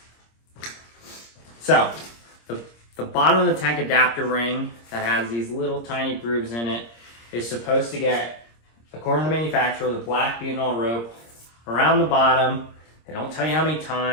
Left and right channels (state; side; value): late; right; 26 ms